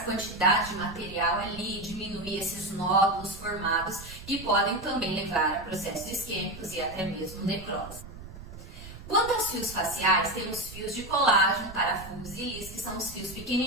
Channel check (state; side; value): noise; right; rumble, 14 dB below the sound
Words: quantidade de material ali, diminuir esses nódulos formados, que podem também levar a processos isquêmicos e até mesmo necrose. Quanto aos fios faciais, temos fios de colágeno, parafusos e lis, que são os fios